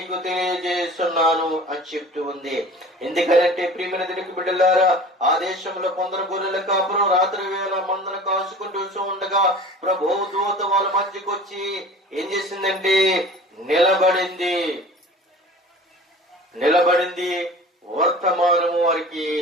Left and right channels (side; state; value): both; normal; correlation 0.41